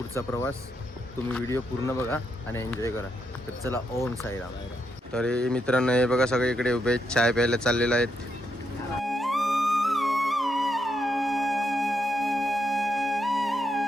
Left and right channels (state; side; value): normal; both; correlation 0.80